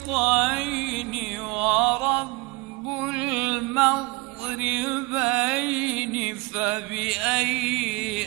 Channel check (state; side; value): quieter; left; 24.5 dB